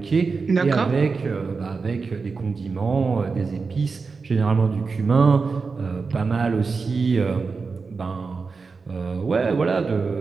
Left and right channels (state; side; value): quieter; left; 4.6 dB